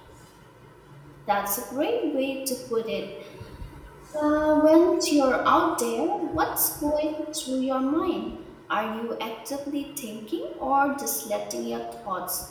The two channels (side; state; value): both; identical; correlation 1.00